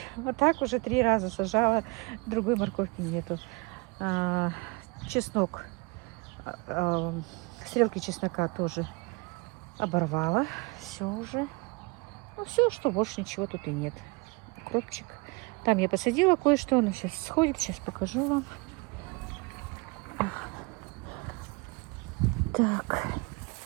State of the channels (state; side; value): quieter; left; 27.6 dB